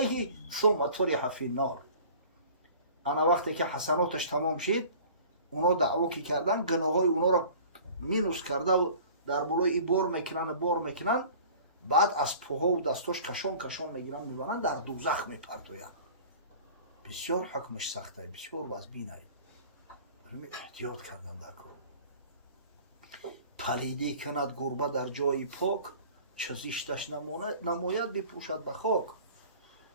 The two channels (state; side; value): inverted; both; correlation -0.45